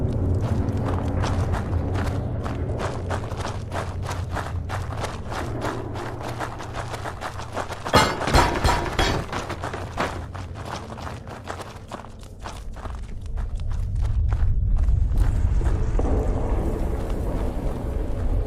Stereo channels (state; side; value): identical; both; correlation 1.00